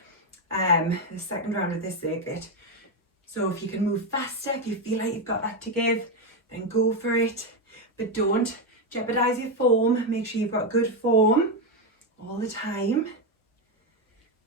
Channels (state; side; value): normal; both; correlation 0.07